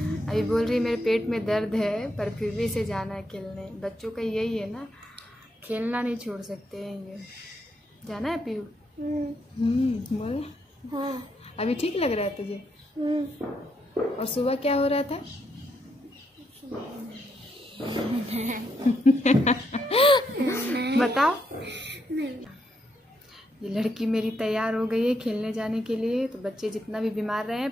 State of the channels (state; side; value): normal; both; correlation 0.78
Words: अभी बोल रही मेरे पेट में दर्द है, पर फिर भी इसे जाना है खेलने। बच्चों का यही है ना, खेलना नहीं छोड़ सकते हैं ये। जाना है पीयू? बोल। हाँ। अभी ठीक लग रहा है तुझे? और सुबह क्या हो रहा था? बताओ। ये लड़की मेरी तैयार हो गई है खेलने जाने के लिए। तो बच्चे जितना भी बीमार रहे हैं,